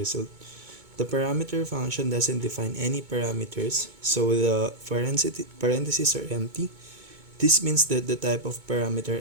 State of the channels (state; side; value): late; left; 2.2 ms